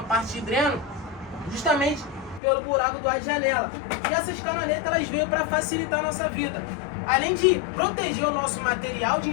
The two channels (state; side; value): drops out; right; at 2.4 s